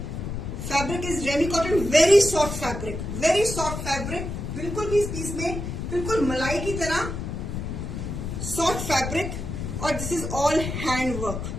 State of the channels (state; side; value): noise; left; rumble, 5 dB below the sound